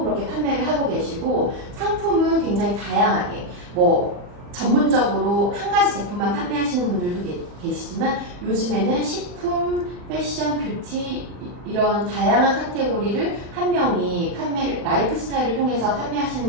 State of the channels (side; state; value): left; late; 40 ms